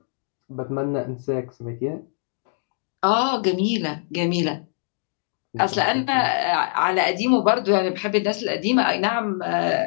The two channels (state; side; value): silent; right; digital silence